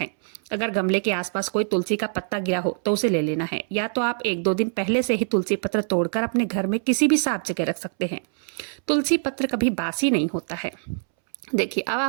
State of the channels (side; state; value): left; silent; 62 dB below the other